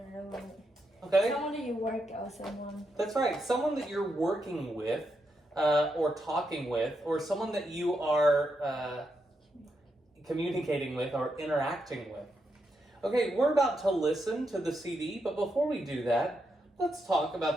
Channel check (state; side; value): normal; both; correlation 0.83